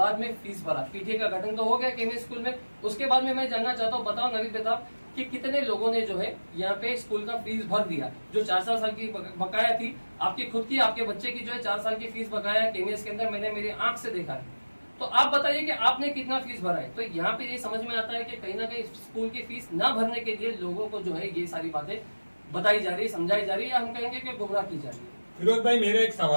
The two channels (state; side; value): inverted; both; correlation -1.00